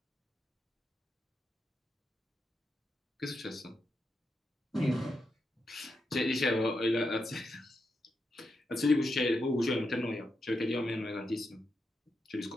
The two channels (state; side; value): normal; both; correlation 0.85